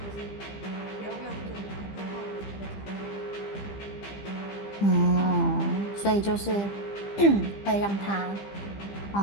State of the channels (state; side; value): late; right; 15 ms